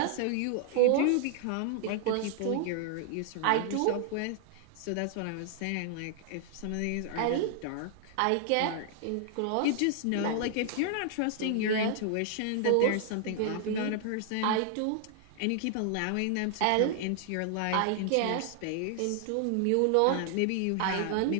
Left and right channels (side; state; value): both; different; correlation 0.00